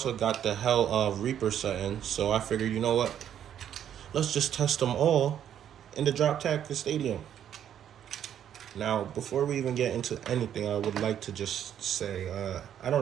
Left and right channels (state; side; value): quieter; left; 9.8 dB